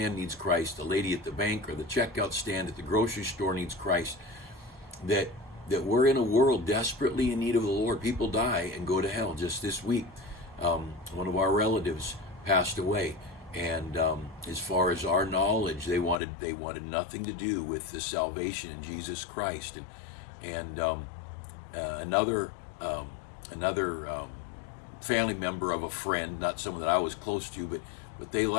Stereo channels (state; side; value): drops out; right; at 16.2 s